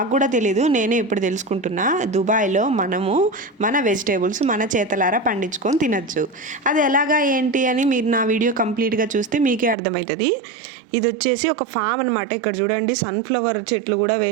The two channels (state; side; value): drops out; left; at 9.8 s